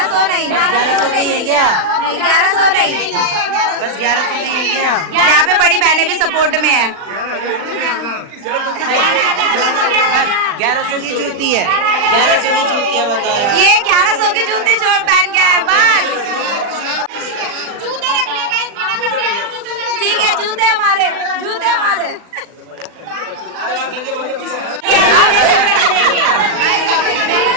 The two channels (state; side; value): late; left; 39 ms